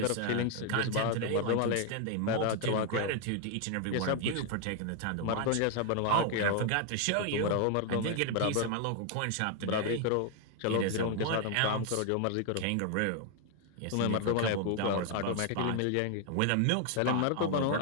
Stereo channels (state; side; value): different; both; correlation 0.00